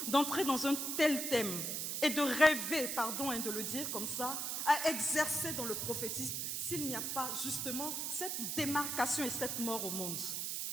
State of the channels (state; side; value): noise; right; hiss, 2 dB below the sound